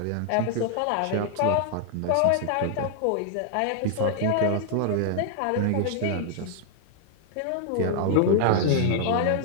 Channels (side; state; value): both; different; correlation -0.01